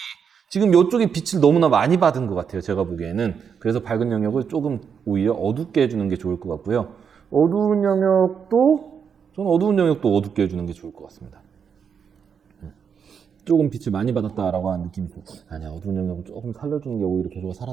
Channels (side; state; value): left; quieter; 7.0 dB